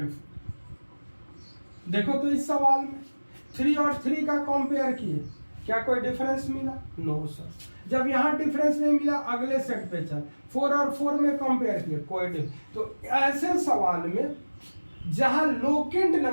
4। देखो तो इस सवाल में 3 और 3 का कंपेयर किए, क्या कोई डिफरेंस मिला, नो सर। जब यहाँ डिफरेंस नहीं मिला अगले सेट पे चल 4 और 4 में कंपेयर किए, कोई डिफरेंस। तो ऐसे सवाल में जहां लोकेंट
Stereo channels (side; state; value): both; inverted; correlation -1.00